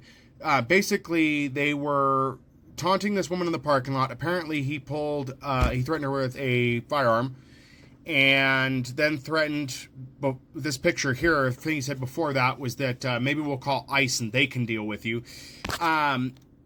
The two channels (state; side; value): identical; both; correlation 1.00